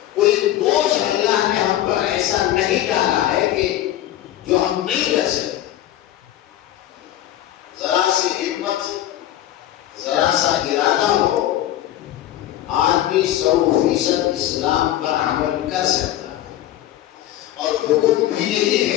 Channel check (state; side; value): quieter; right; 13.2 dB